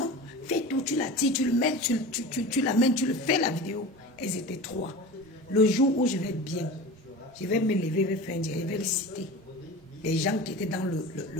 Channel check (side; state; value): both; normal; correlation 0.33